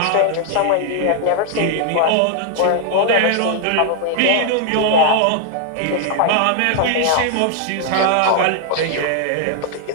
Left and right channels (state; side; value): different; both; correlation 0.00